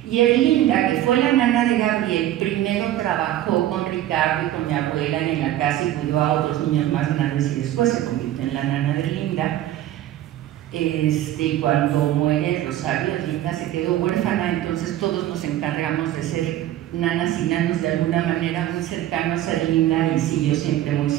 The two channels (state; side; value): quieter; left; 13.2 dB